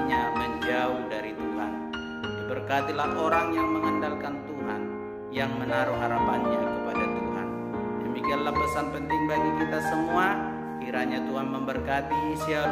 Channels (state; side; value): identical; both; correlation 1.00